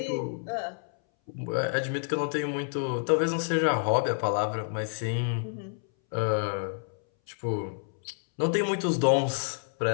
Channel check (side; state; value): right; silent; 59 dB below the other